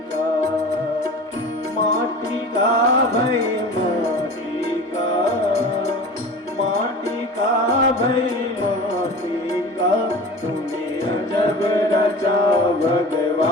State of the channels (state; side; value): normal; both; correlation 0.36